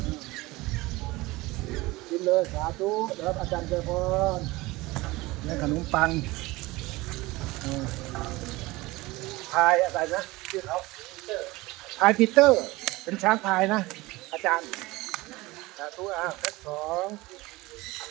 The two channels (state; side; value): quieter; left; 20.9 dB